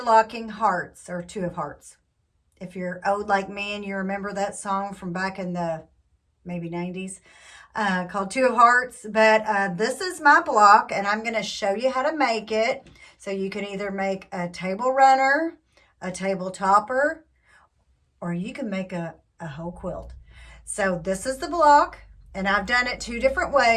hearts, or two of hearts. If you're old like me and you remember that song from back in the maybe 90s, called Two of Hearts. But this is my block and I'm going to show you how to make it. So you can either make a table runner, a table topper, or you can make a whole quilt. So this is the block, and I've done it two different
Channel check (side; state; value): both; identical; correlation 1.00